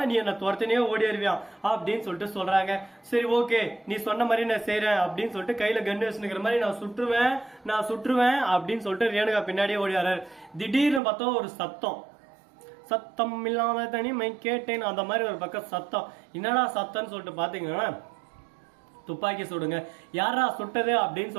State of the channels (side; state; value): left; drops out; at 11.0 s